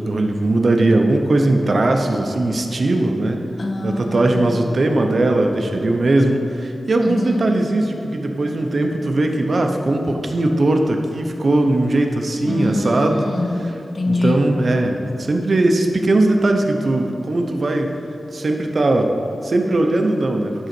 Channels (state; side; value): normal; both; correlation 0.95